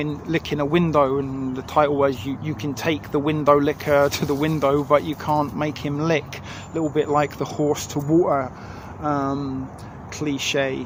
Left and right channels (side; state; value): both; identical; correlation 1.00